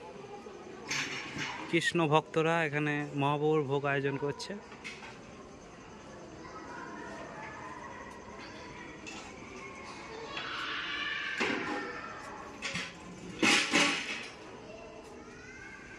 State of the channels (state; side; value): identical; both; correlation 1.00